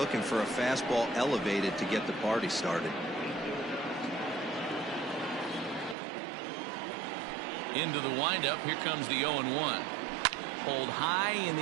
for a fastball elevated to get the party started. Into the windup. Here comes the 0-1. Pulled high in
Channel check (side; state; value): left; drops out; at 6.0 s